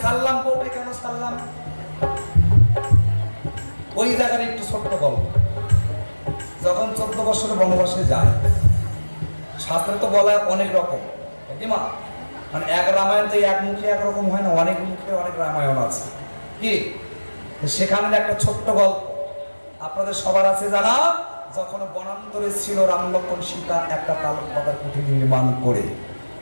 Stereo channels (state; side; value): inverted; both; correlation -1.00